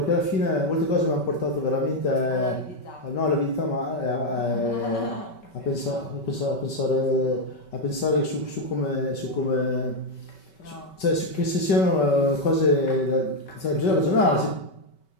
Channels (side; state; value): right; late; 5.2 ms